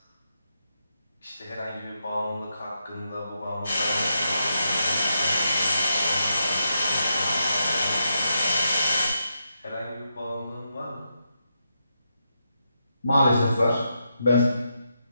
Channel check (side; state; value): both; inverted; correlation -0.83